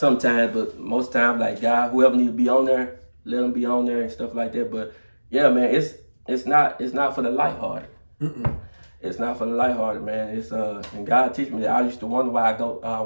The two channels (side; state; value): both; inverted; correlation -1.00